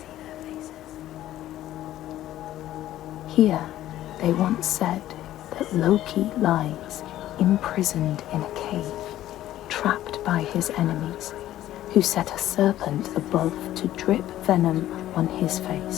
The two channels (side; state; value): right; quieter; 13.5 dB